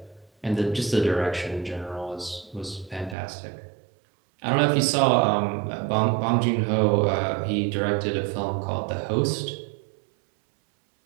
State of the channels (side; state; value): left; drops out; at 3.2 s